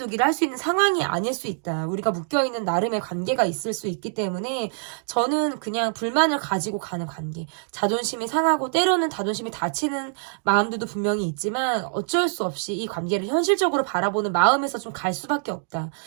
할 수 있는 상황이 아닐 수 있다. 우리가 묶여있는 나름의 관계가 있을 수 있기 때문에 저는 그냥 불만을 가지고 가는 관계. 자존심이 상하고 때로는 자존심이 다치는 마음들도 분명히 있지만 어쩔 수 없이 이 관계를 현실적으로 바라보는 마음에서 좀 갈 수밖에 없다.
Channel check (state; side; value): silent; left; digital silence